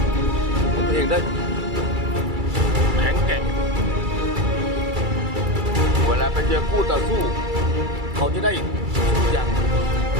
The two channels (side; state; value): left; late; 2.3 ms